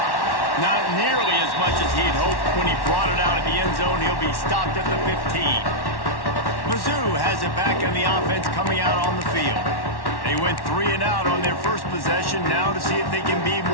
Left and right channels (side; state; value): right; late; 1.1 ms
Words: Not nearly as much as he'd hoped when he brought it out of the end zone. He'll be stopped at the 15. Mizzou has it back on the offense coming out on the field. They went 3 and out on their first possession, now to see if they can be